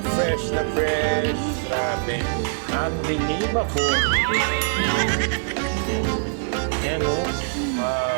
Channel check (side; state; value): left; silent; 63 dB below the other